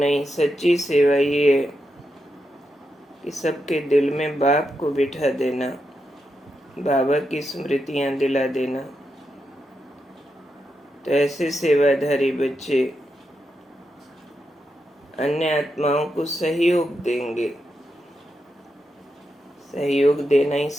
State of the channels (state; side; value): normal; both; correlation 0.86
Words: सच्ची सेवा ये है कि सबके दिल में बाप को बिठा देना, बाबा की स्मृतियां दिला देना। तो ऐसे सेवाधारी बच्चे अन्य आत्माओं को सहयोग देंगे। सहयोग देना ही